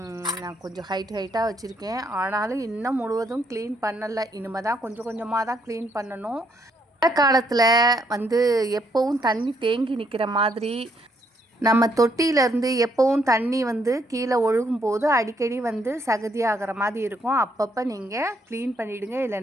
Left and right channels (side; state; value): both; normal; correlation 0.72